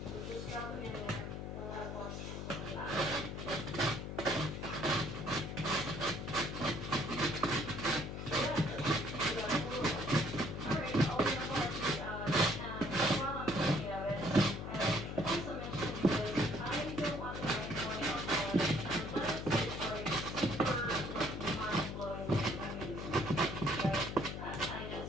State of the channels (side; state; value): left; noise; hum, 6 dB below the sound